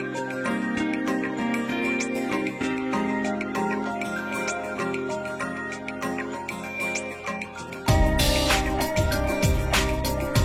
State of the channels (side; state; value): both; identical; correlation 1.00